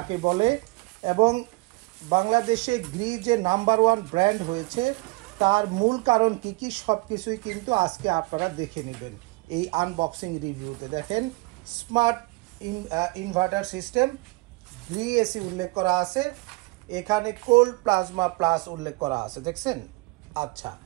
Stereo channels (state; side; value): quieter; left; 25.5 dB